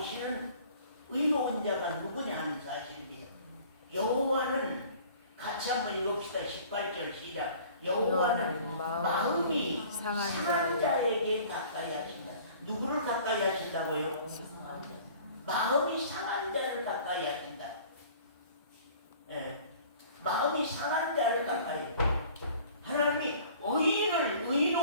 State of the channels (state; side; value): inverted; both; correlation -0.49